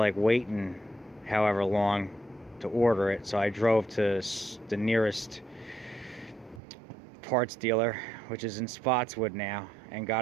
waiting however long to order it, so I drove to the nearest parts dealer, which is in Spotswood now, and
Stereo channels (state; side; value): drops out; left; at 6.6 s